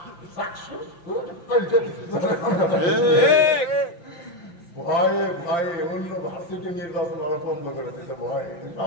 চাকসু ভয়ে অন্য ভার্সিটি নির্বাচন ওরা বন্ধ করে দিতে ভয়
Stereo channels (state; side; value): late; right; 5.8 ms